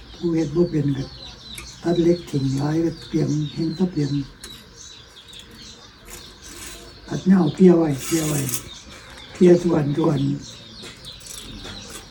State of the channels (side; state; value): both; identical; correlation 1.00